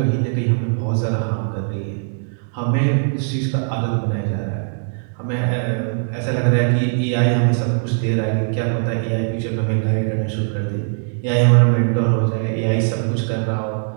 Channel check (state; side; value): silent; left; digital silence